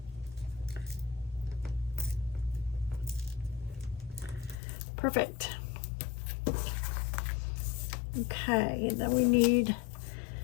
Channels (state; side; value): drops out; right; at 4.5 s